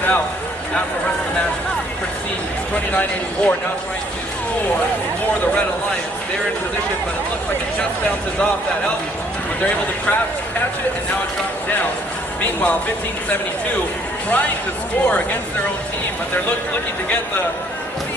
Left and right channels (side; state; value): both; normal; correlation 0.63